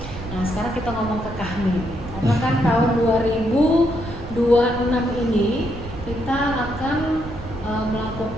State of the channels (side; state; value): right; noise; rumble, 12 dB below the sound